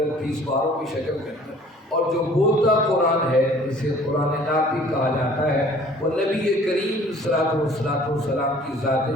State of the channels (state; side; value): normal; both; correlation 0.52